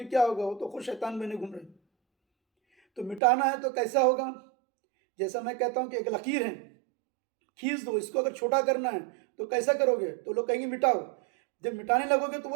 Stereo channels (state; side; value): drops out; left; at 3.2 s